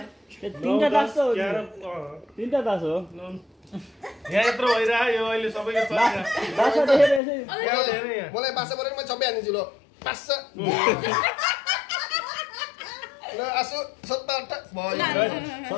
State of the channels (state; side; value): drops out; right; at 7.2 s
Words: तीनटा दास हो तीनटा दास हो यहाँ यत्रो भइरह्यो अहिले सबैको चलिरहेको दास देखेर यसै मलाई बासा परेर म छप्पै हान्दिन्छु ल पास ल आसु 77 भयो